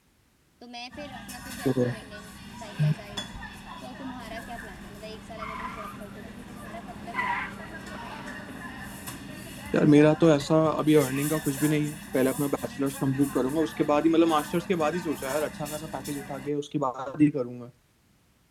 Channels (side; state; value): both; identical; correlation 1.00